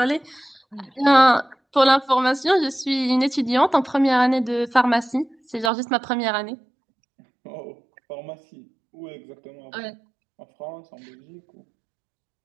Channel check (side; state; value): left; drops out; at 5.7 s